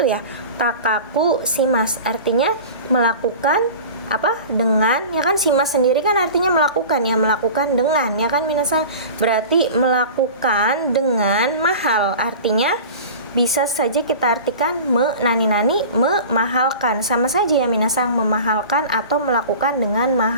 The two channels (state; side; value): inverted; both; correlation -0.37